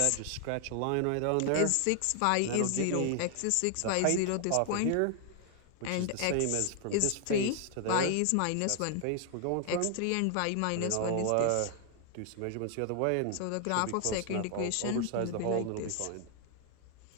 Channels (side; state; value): both; different; correlation 0.00